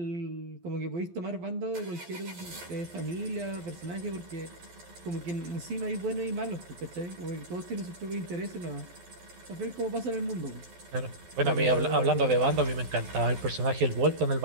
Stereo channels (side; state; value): left; late; 12 ms